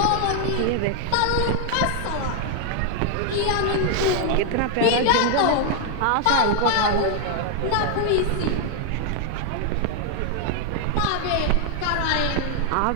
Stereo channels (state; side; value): different; both; correlation 0.00